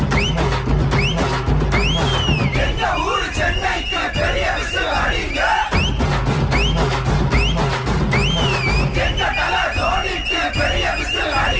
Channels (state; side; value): identical; both; correlation 1.00